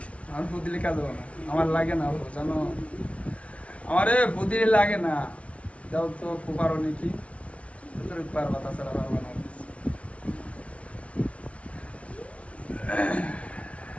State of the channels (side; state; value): right; late; 0.063 ms